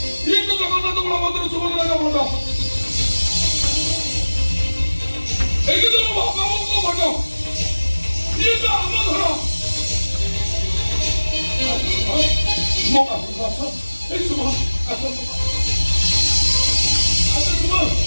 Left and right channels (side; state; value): both; inverted; correlation -1.00